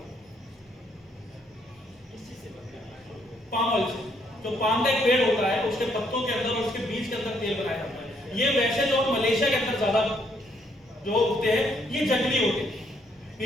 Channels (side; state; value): both; normal; correlation 0.71